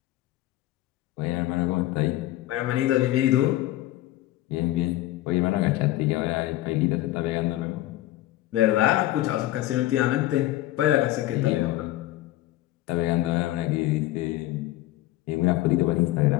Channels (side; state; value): right; quieter; 15.8 dB